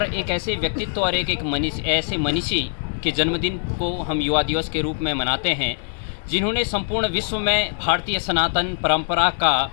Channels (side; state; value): right; silent; digital silence